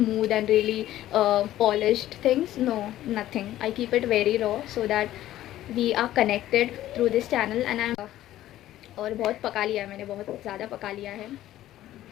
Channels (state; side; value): quieter; right; 13.8 dB